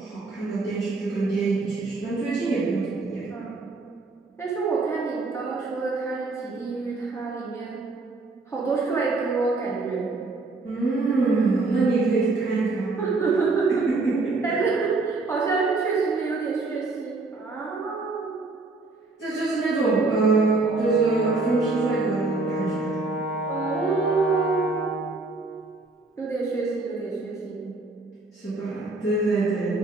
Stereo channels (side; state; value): left; quieter; 3.6 dB